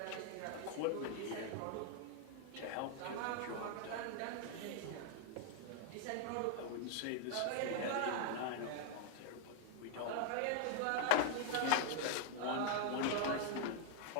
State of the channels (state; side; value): different; both; correlation 0.00